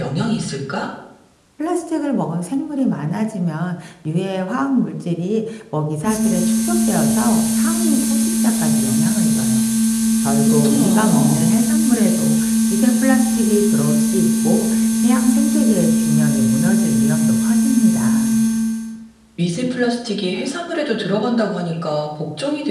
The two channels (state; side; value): identical; both; correlation 1.00